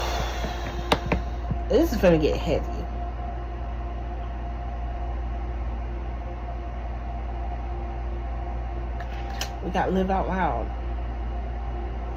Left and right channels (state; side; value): identical; both; correlation 1.00